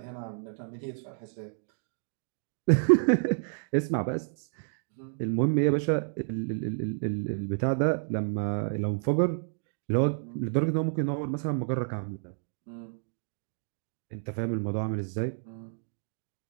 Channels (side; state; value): left; silent; digital silence